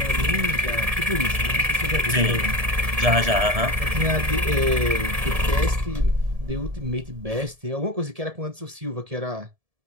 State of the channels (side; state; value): left; late; 1.7 ms